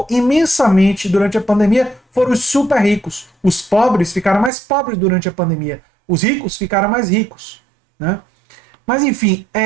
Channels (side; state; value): left; drops out; at 4.5 s